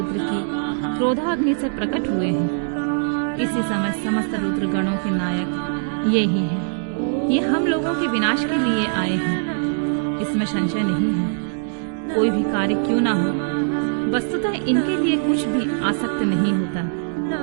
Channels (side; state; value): left; silent; digital silence